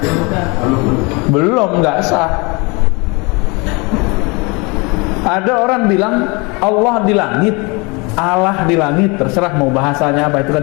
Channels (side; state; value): right; quieter; 28.3 dB